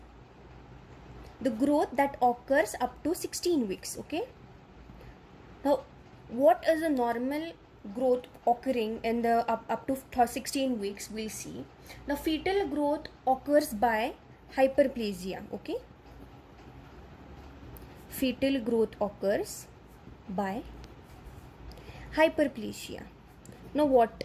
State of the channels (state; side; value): identical; both; correlation 1.00